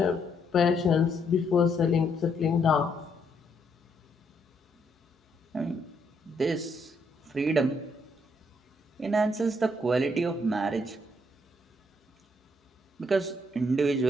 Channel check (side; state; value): both; normal; correlation 0.73